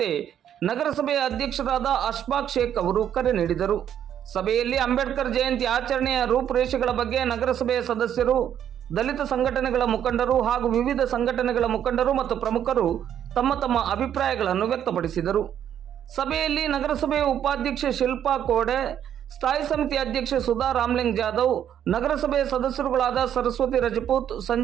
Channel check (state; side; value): quieter; left; 9.8 dB